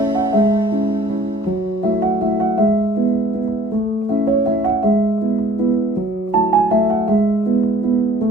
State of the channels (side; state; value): both; normal; correlation 0.54